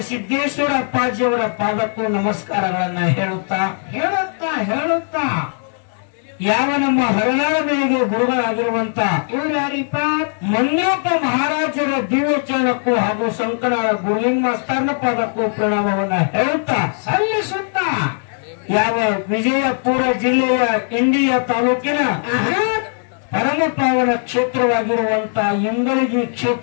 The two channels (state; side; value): silent; right; 59 dB below the other